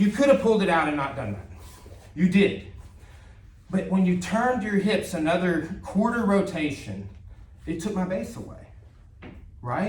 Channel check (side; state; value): both; identical; correlation 1.00